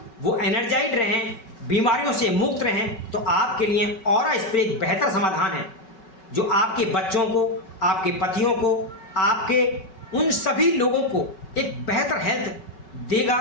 वो एनर्जाइड रहें, बीमारियों से मुक्त रहें। तो आपके लिए ऑरा स्प्रे एक बेहतर समाधान है, जो आपके बच्चों को, आपके पतियों को, आपके उन सभी लोगों को एक बेहतर हेल्थ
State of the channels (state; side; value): late; right; 5.3 ms